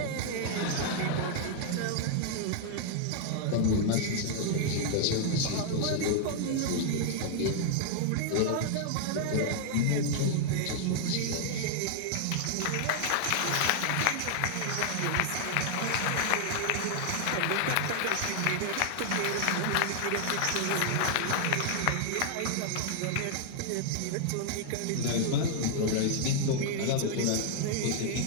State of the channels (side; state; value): both; different; correlation -0.01